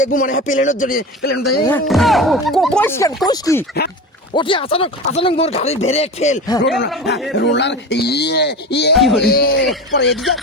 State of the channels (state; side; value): normal; both; correlation 0.29